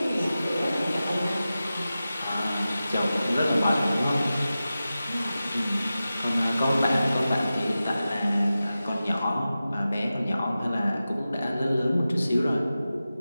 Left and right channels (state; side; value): inverted; both; correlation -0.94